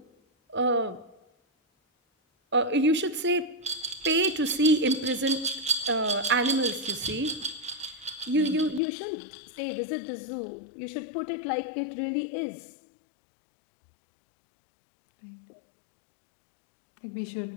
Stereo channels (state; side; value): drops out; right; at 8.8 s